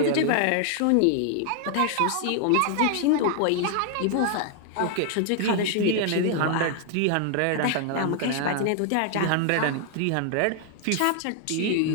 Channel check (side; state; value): both; different; correlation 0.00